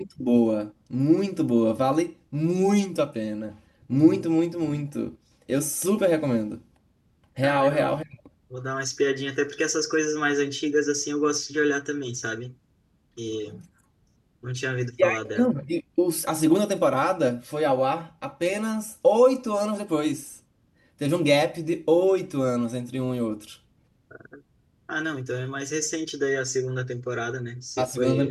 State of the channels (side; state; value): both; identical; correlation 1.00